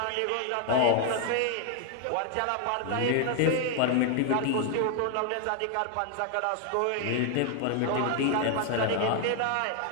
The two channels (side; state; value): both; different; correlation 0.00